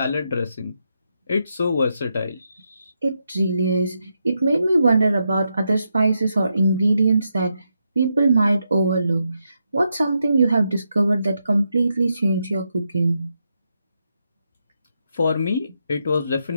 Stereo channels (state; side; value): inverted; both; correlation -0.83